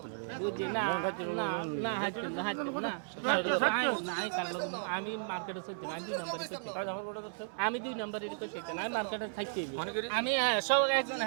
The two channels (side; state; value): left; silent; 55 dB below the other